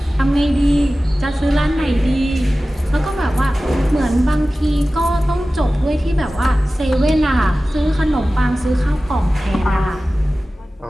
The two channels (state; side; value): normal; both; correlation 0.96